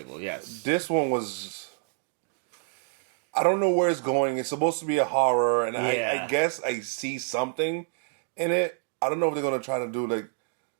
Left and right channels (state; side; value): silent; left; digital silence